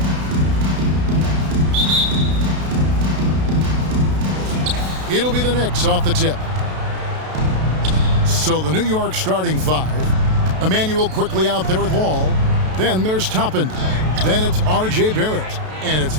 It'll be the Knicks off the tip. So the New York starting five. Emmanuel quickly out there with Wall. Then there's Toppin. Then it's R.J. Barrett. And it's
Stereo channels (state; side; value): late; left; 32 ms